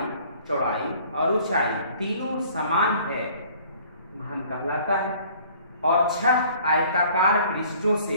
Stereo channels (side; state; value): both; inverted; correlation -0.54